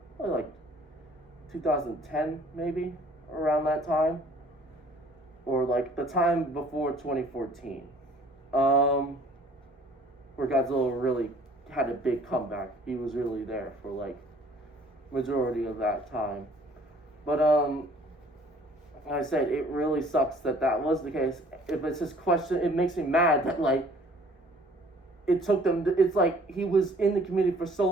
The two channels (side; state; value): both; normal; correlation 0.55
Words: probably 2010 maybe, around that time, or like the time before 2014, where Godzilla really had a big comeback. He was really there for like majority of that time. But like I said, it really sucks that was the case. If it's just question, it makes me mad that like it took them. It's like he was in the community for so